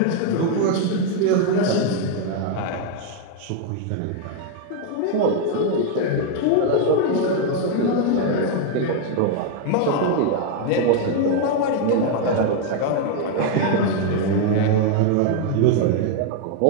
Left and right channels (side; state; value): both; different; correlation 0.00